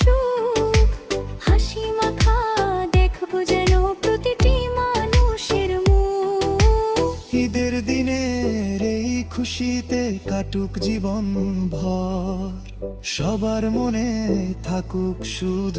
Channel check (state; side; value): identical; both; correlation 1.00